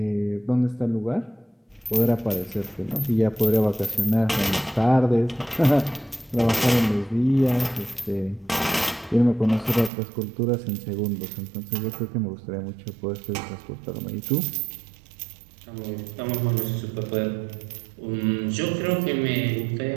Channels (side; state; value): left; drops out; at 9.9 s